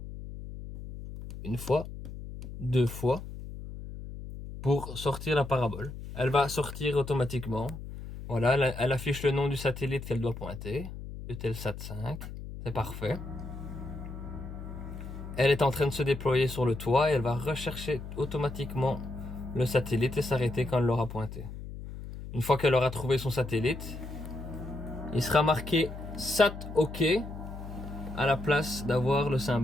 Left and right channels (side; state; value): left; noise; hum, 10 dB below the sound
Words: une fois, 2 fois, pour sortir la parabole. Elle va sortir automatiquement. Voilà, elle affiche le nom du satellite qu'elle doit pointer, Eutelsat 5, c'est parfait. Elle est en train de se déployer sur le toit et elle va rechercher automatiquement le satellite et s'arrêter quand elle l'aura pointé. Une fois qu'elle aura trouvé son satellite, il sera marqué SAT OK à la place d'avoir le